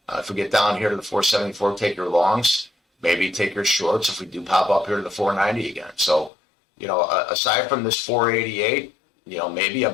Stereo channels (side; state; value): right; drops out; at 6.3 s